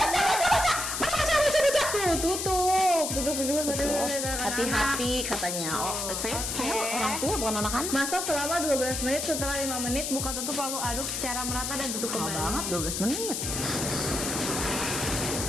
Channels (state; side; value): noise; left; hiss, 2 dB below the sound